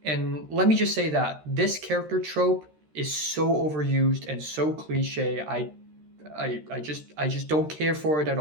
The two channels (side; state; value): left; late; 13 ms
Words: And let me just say that this character trope is so overused and so cliche. I just don't care for it at